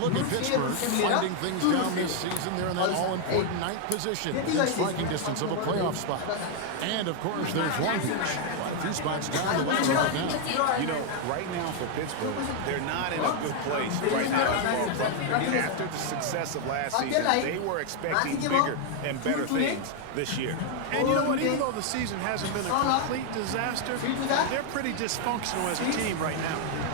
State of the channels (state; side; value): different; both; correlation 0.00